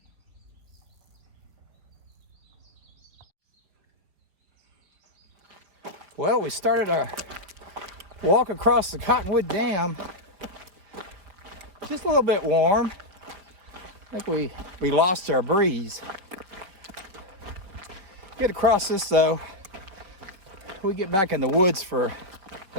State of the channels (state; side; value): late; left; 4.9 ms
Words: Well, we started our walk across the Cottonwood Dam. Just a little bit warm. I think we lost our breeze. Get across this though, we get back in the woods for